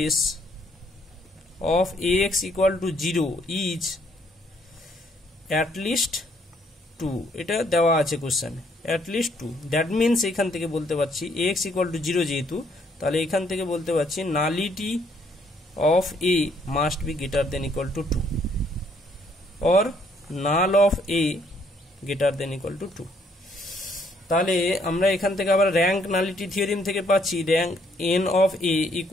of ax equal to 0 is at least 2, এটা দেওয়া আছে কোশ্চেনে, অ্যাট লিস্ট 2। দ্যাট মিনস এখান থেকে বলতে পারছি ax ইকুয়াল টু 0 যেহেতু, তাহলে এখান থেকে বলতে পারছি nullity of a must be greater than equal to 2 or null of a greater than equal to 2। তাহলে আমরা এখান থেকে আবার র্যাঙ্ক নালিটি থিওরিম থেকে পাচ্ছি rank n of a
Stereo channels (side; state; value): both; normal; correlation 0.68